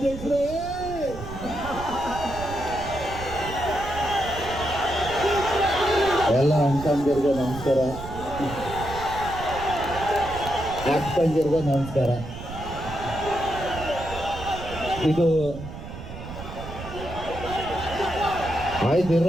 ಎಲ್ಲ ಅಣ್ತಂದಿರ್ಗೂ ನಮಸ್ಕಾರ, ಅಕ್ಕಂದಿರ್ಗೂ ನಮಸ್ಕಾರ. ಇದು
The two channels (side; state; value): right; noise; rumble, 11 dB below the sound